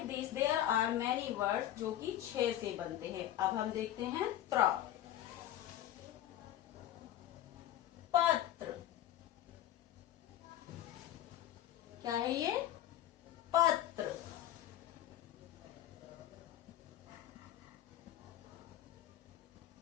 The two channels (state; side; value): quieter; right; 12.6 dB